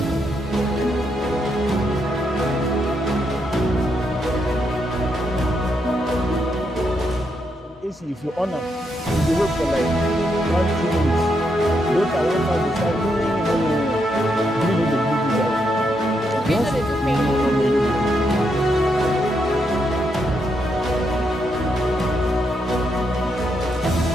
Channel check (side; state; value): both; normal; correlation 0.80